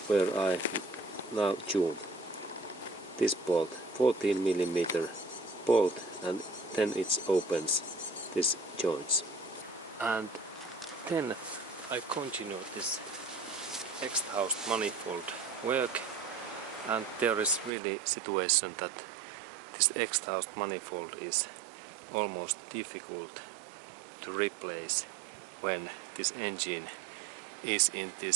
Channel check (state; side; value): drops out; left; at 17.7 s